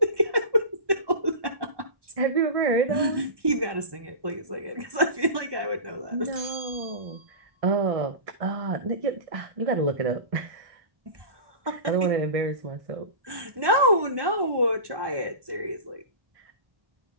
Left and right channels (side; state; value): left; late; 1.1 ms